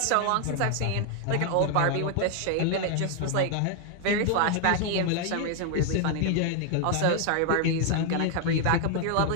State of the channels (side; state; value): both; different; correlation 0.00